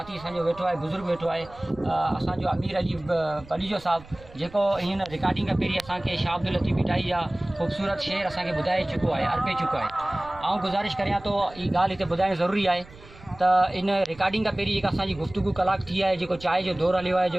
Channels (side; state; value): right; noise; rumble, 20 dB below the sound